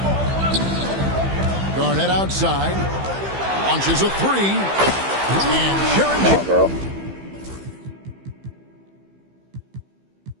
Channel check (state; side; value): late; left; 15 ms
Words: Garnett outside. Launches a three. And Sharon Come on, bro.